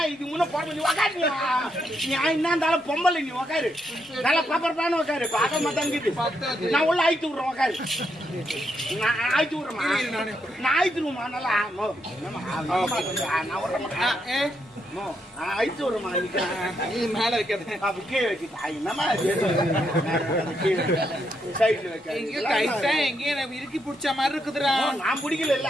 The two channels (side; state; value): both; normal; correlation 0.79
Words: இது முன்ன போற உக்காரு. நீ என்ன இருந்தாலும் பொம்பளை நீ உக்காரு. நல்லா பாப்பரப்பான உக்காரு. பாக்க மாட்டாங்குது. நான் உள்ள ஆயிட்டு விடுறேன் உக்காரு. நான் ஆயிட்டு விடுறேமா நான் ஆயிட்டுருமா நல்லா நான் விடுறேன் ஐத்து வருமா மேல வைக்கிறது கீழே வைக்கிட்டா என்னமா சைட்ல வைக்க எங்கேயும் இறுக்கி பிடிச்ச மாதிரி இருக்குதுடா. நான் பிடிக்கல இல்ல